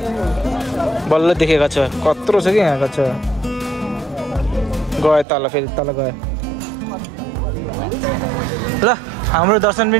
बल्ल देखेँ कच्छा कत्रो छ कि यहाँ कच्छा गयो तल फेरि तल गयो ल हाम्रो दर्शन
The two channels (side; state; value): left; drops out; at 5.2 s